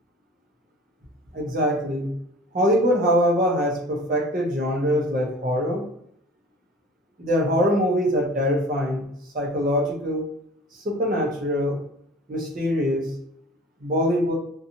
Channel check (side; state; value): both; normal; correlation 0.43